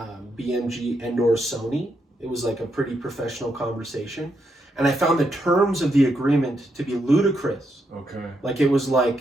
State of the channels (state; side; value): normal; both; correlation 0.80